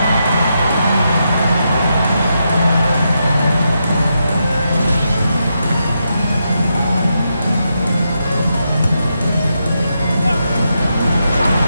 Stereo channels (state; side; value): inverted; both; correlation -0.84